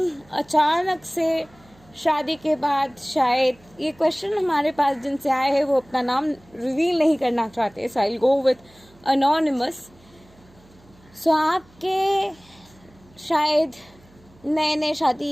अचानक से शादी के बाद शायद ये क्वेश्चन हमारे पास जिनसे आए हैं वो अपना नाम रिवील नहीं करना चाहते। So I will go with anonymous. सो आपके शायद नए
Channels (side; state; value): right; noise; hum, 28 dB below the sound